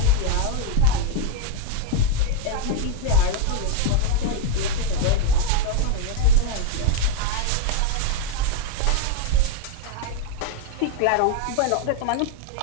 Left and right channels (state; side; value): different; both; correlation 0.01